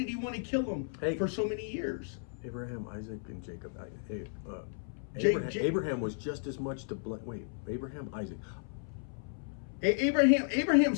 he want to kill him for so many years? Abraham, Isaac, and Jacob. Abraham was just as much to blame. Wait, Abraham, Isaac. Abraham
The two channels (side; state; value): right; silent; 55 dB below the other